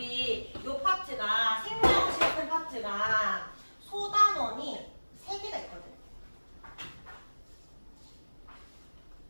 요 파트가 생명실험 파트가 소단원이 3개가 있거든.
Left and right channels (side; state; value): both; inverted; correlation -1.00